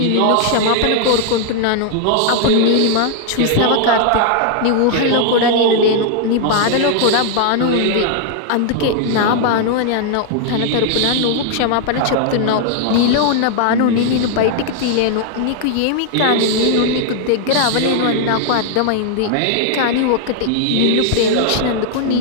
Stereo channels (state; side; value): different; both; correlation 0.00